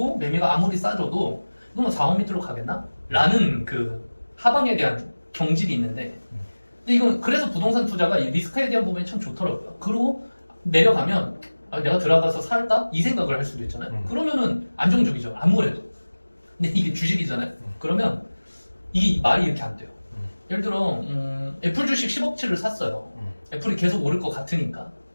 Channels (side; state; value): both; inverted; correlation -1.00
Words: 매매가 아무리 싸져도 너무 4억 밑으로 가겠나? 라는 그 하방에 대한 경질이 있는데, 근데 이건 그래서 부동산 투자가 이 리스크에 대한 부분이 참 좋더라고요. 그리고 내려가면 내가 들어가서 살까? 이 생각을 할 수도 있잖아요. 그러면은 안정적이죠, 아무래도. 근데 이게 주식이잖아요. 그러면 이 말이 이렇게 안 돼요. 예를 들어 애플 주식 10억치를 샀어요. 애플이 계속 오를 것 같으니까.